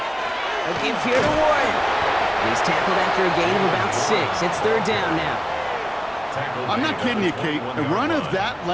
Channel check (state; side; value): identical; both; correlation 1.00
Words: A give here to Warren. He's tackled after a gain of about 6. It's 3rd down now. I'm not kidding you, Kate. A run of that